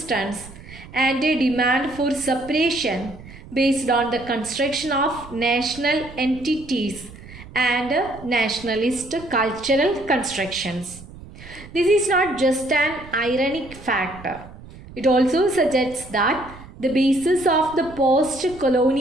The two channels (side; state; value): right; noise; rumble, 17 dB below the sound